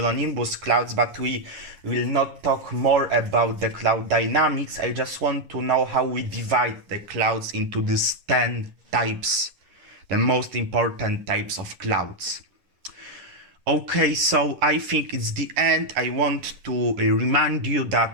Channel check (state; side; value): late; left; 11 ms